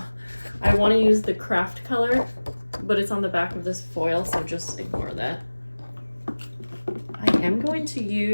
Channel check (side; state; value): both; inverted; correlation -1.00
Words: I want to use the craft color, but it's on the back of this foil, so just ignore that. I am going to